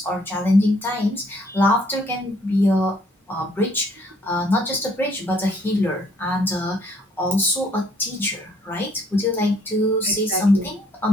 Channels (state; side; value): normal; both; correlation 0.64